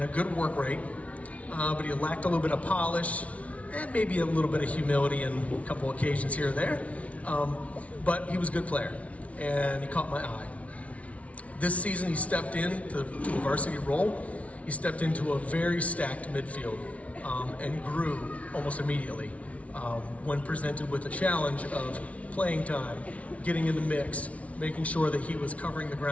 a good work rate, but he lacked a little bit of polish and maybe a little bit of humility in a couple occasions here or there. But he was a good player, and he caught my eye. This season he stepped into a varsity role. He stepped into a very stacked midfield and grew almost immediately when presented with the challenge of playing time, getting in the mix, making sure that he was covering the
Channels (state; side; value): late; right; 0.065 ms